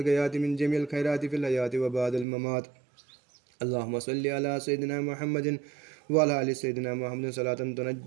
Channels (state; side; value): drops out; left; at 2.2 s